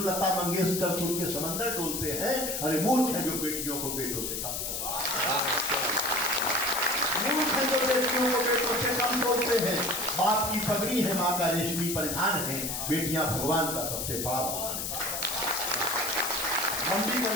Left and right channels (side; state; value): left; noise; hiss, 3 dB below the sound